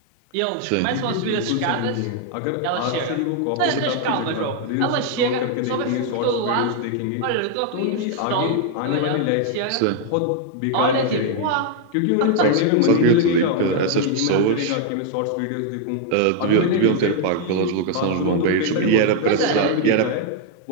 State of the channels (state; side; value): different; both; correlation 0.00